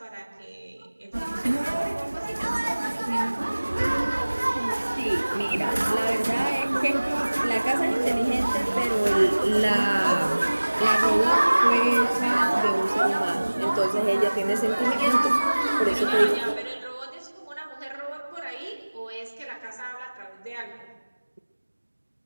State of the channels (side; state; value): both; inverted; correlation -1.00